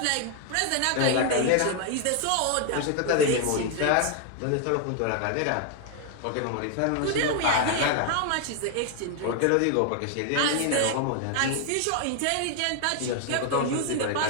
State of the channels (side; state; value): both; different; correlation 0.00